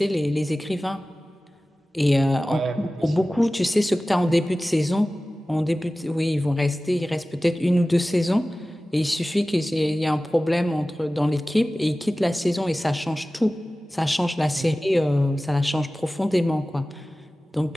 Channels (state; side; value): normal; both; correlation 0.97